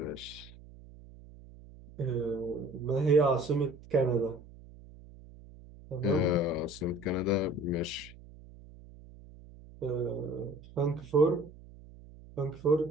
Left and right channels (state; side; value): noise; right; hum, 20 dB below the sound